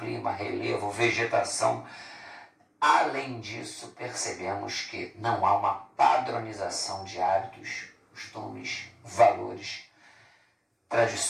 relevo, vegetação. Além disso, percebemos que não há uma padronização de hábitos, costumes, valores,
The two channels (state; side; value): identical; both; correlation 1.00